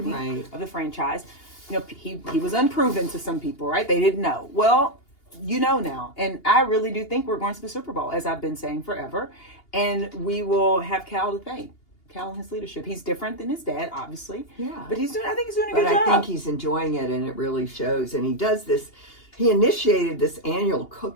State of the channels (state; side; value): late; right; 2.8 ms